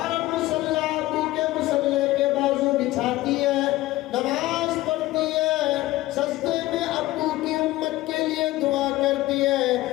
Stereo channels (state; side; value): quieter; right; 17.3 dB